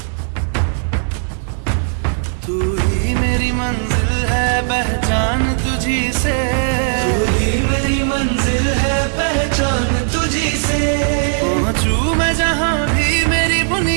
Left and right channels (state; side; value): silent; left; digital silence